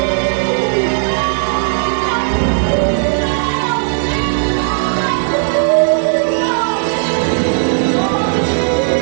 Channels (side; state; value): left; silent; 70 dB below the other